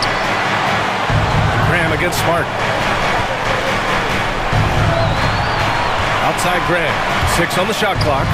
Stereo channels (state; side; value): identical; both; correlation 1.00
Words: Graham against Smart. Outside Graham. 6 on the shot clock.